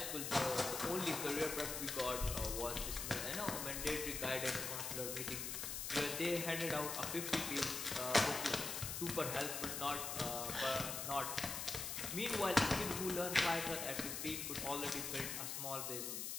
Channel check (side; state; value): left; noise; hiss, 3 dB below the sound